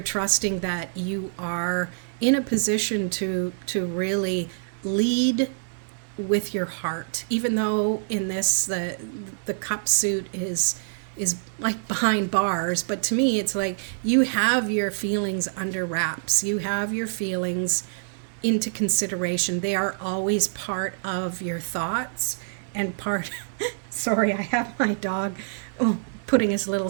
trusting that you are in a position to really lead with your heart, even though in this the cup suit is like behind bars. But to me, it's like you have your feelings under wraps. You have your feelings into consideration. They are always part of your thoughts and part sorry, I have my dog putting his little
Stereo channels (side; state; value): left; silent; digital silence